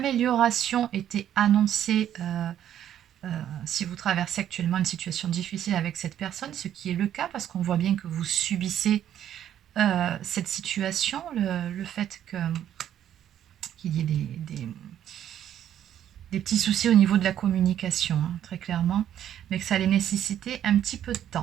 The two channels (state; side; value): quieter; left; 10.6 dB